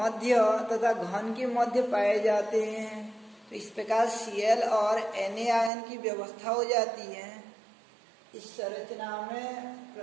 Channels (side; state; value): left; drops out; at 5.7 s